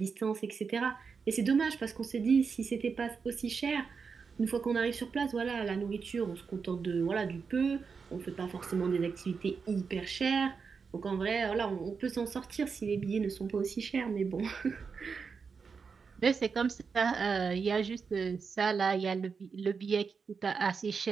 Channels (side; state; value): left; quieter; 5.5 dB